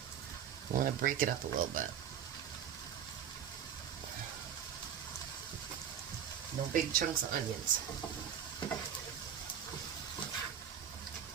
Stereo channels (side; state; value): left; quieter; 8.8 dB